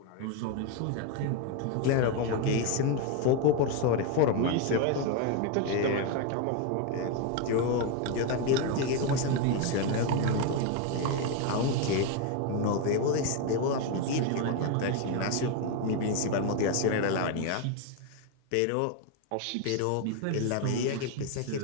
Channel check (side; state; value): both; different; correlation 0.01